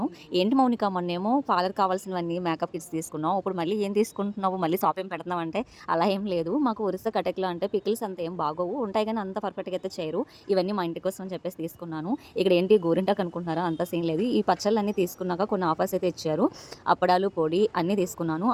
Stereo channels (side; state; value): both; identical; correlation 1.00